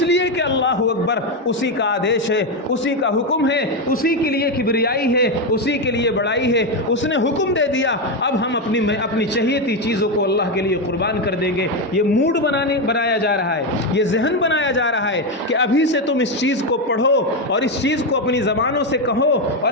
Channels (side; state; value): both; normal; correlation 0.09